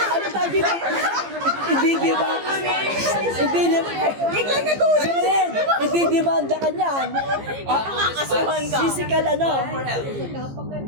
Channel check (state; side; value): late; left; 15 ms